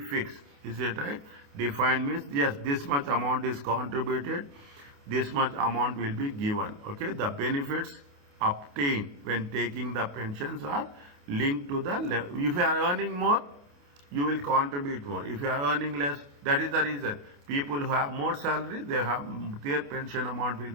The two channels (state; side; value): late; left; 28 ms